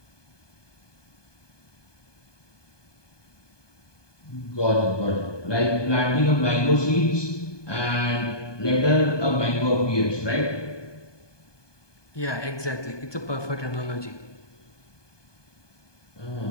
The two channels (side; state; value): right; late; 1.2 ms